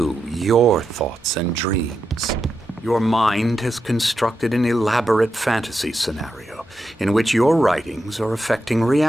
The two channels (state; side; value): normal; both; correlation 0.86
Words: your thoughts and dreams. Your mind has constructed an elaborate fantasy scenario in which your writings are affecting